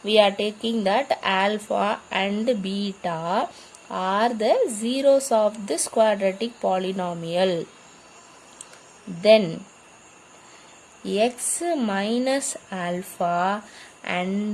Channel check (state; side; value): identical; both; correlation 1.00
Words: we are taking that alpha and beta are the zeros of this quadratic polynomial. Then x minus alpha